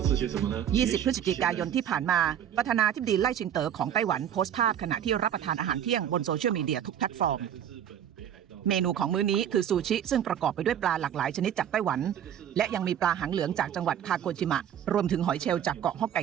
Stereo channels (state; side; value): quieter; left; 9.6 dB